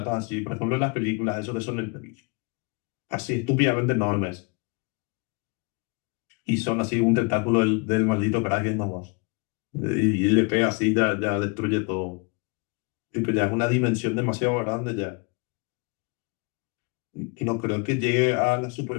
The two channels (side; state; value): right; quieter; 31.3 dB